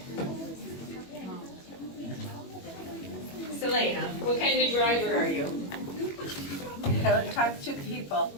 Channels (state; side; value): late; right; 21 ms